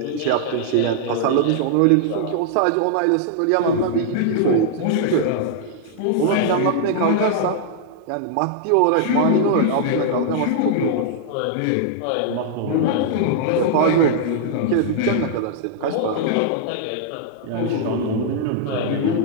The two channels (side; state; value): both; different; correlation -0.01